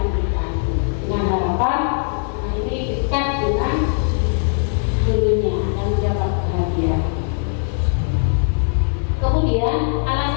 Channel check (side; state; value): right; silent; 66 dB below the other